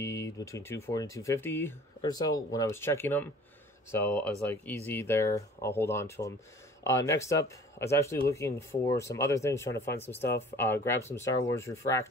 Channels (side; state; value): both; normal; correlation 0.48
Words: between 240 and 250 or so when I was checking them. So I was like, easy there. I'll hold on to them. Next up, I was actually looking for some other things, trying to find some stuff. Grab some Star Wars